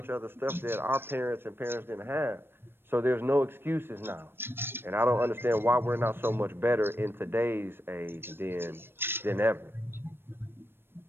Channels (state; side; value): late; left; 0.10 ms